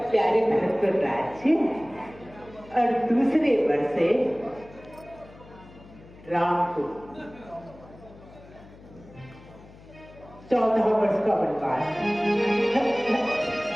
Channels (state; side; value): noise; left; hum, 21 dB below the sound